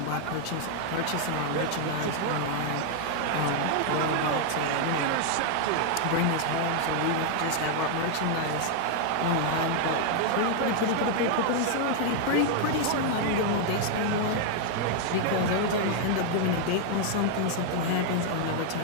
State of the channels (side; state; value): both; different; correlation 0.00